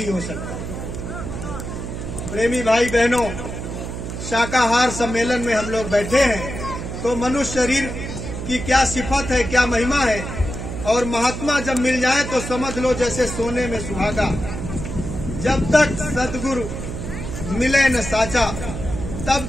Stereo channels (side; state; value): right; noise; hum, 7 dB below the sound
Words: हो सकता। प्रेमी भाई बहनों, शाकाहार सम्मेलन में हम लोग बैठे हैं तो मनुष्य शरीर की क्या सिफत है, क्या महिमा है, और महात्मा जब मिल जाए तो समझ लो जैसे सोने में सुहागा। जब तक सदगुरु मिले न साचा तब